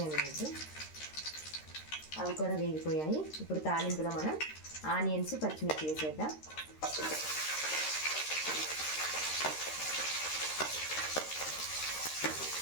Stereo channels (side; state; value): right; late; 13 ms